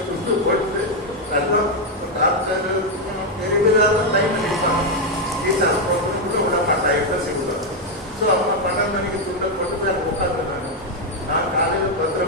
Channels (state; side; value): normal; both; correlation 0.03